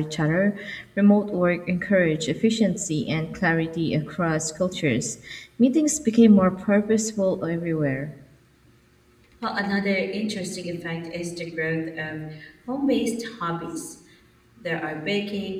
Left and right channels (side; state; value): both; identical; correlation 1.00